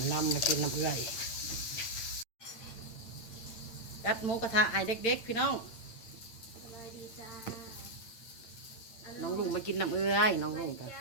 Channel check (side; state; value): right; late; 8.8 ms